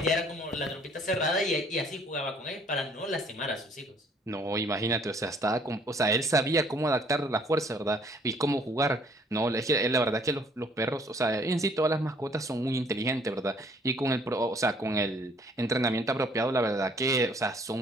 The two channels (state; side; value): normal; both; correlation 0.60